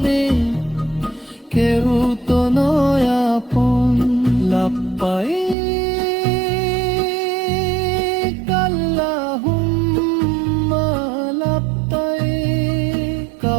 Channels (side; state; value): left; drops out; at 5.6 s